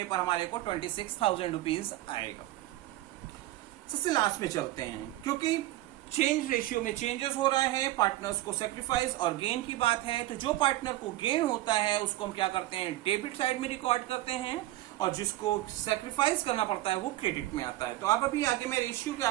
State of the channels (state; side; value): quieter; left; 16.3 dB